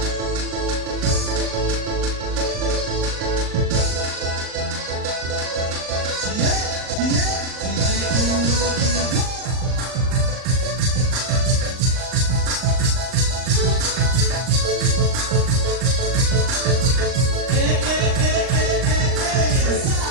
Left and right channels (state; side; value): late; left; 39 ms